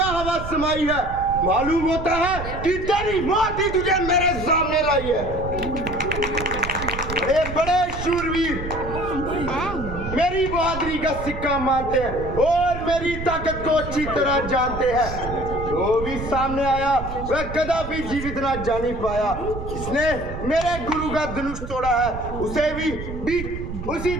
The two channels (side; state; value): right; noise; rumble, 8 dB below the sound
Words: हवा समाई है? मालूम होता है कि तेरी मौत ही तुझे मेरे सामने लाई है। बड़े बड़े शूरवीर मेरी बहादुरी का सिक्का मानते हैं और मेरी ताकत को अच्छी तरह जानते हैं। जो भी सामने आया वह कदापि जीवित ना जानी पाया। जिसने मेरे गुरु का धनुष तोड़ा है उसे भी बीच उसी